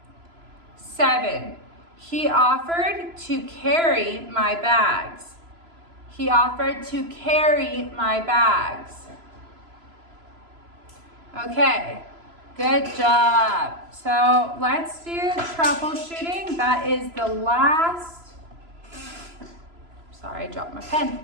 7. He offered to carry my bags. He offered to carry my bags. Okay, good job. So let's do troubleshooting. That is the last, sorry, I dropped my pen.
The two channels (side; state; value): left; late; 3.0 ms